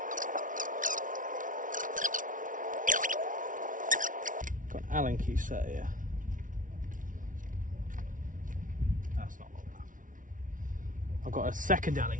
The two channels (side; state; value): left; late; 0.38 ms